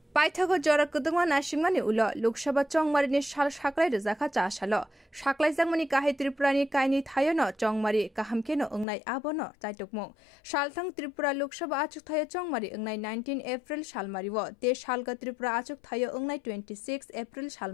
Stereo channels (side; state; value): right; drops out; at 8.8 s